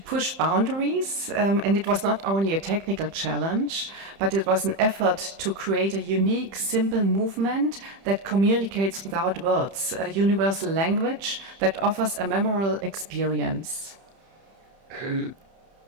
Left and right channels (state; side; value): late; left; 31 ms